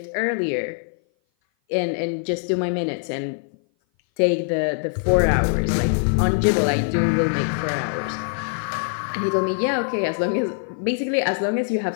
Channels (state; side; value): silent; right; 57 dB below the other